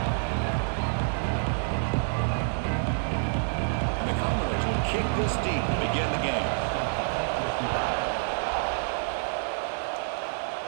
And the Commodores will kick this deep to begin the game.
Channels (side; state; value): left; silent; digital silence